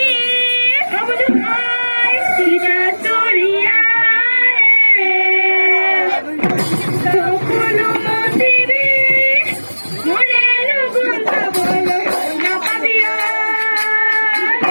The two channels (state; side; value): inverted; both; correlation -1.00